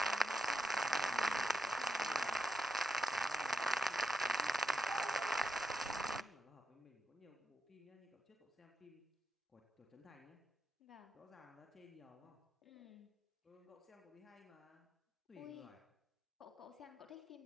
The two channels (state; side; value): normal; both; correlation 0.85